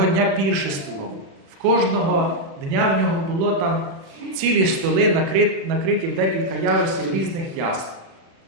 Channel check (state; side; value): late; left; 36 ms